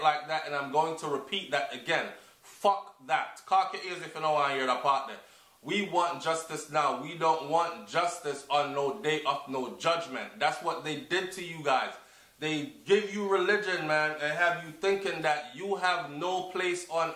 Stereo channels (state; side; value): identical; both; correlation 1.00